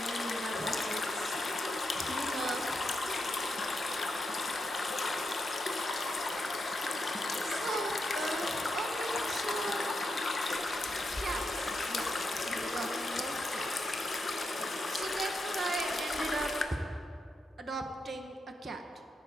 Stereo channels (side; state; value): both; normal; correlation 0.84